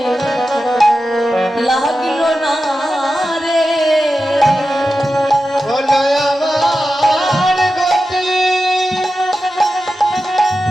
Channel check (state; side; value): normal; both; correlation 0.92